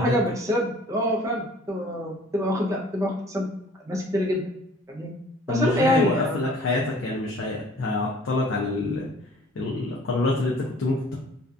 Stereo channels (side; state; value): both; normal; correlation 0.52